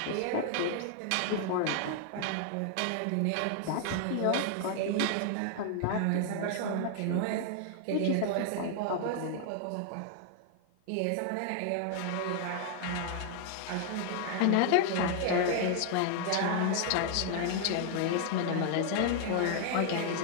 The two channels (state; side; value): different; both; correlation -0.01